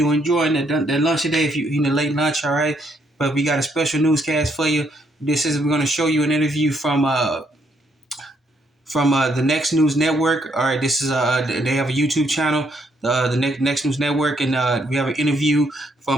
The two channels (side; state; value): both; normal; correlation 0.72